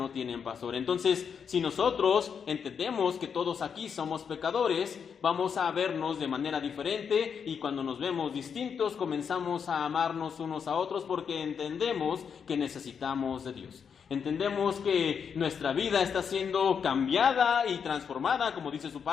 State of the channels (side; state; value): right; quieter; 6.9 dB